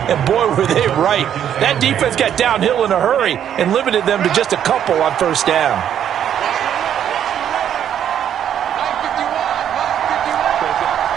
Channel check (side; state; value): left; quieter; 9.7 dB